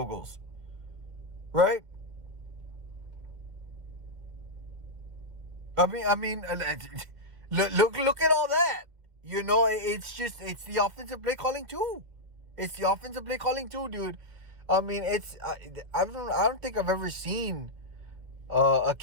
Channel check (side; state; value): left; late; 2.0 ms